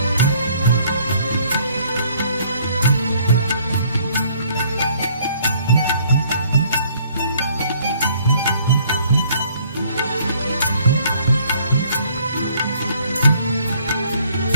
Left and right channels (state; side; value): inverted; both; correlation -0.60